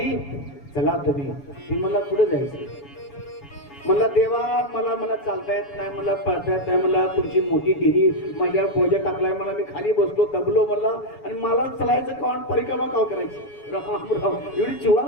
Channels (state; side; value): late; right; 7.1 ms